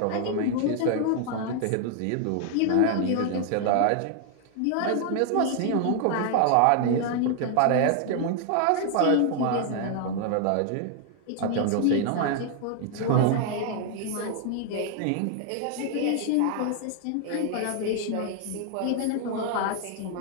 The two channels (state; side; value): different; both; correlation 0.00